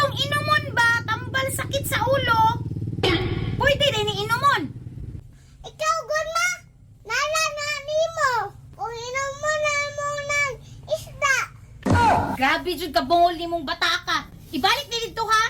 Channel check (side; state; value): both; identical; correlation 1.00